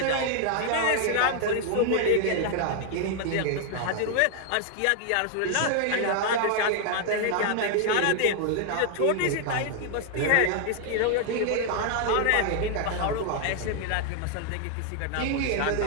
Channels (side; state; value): both; different; correlation 0.00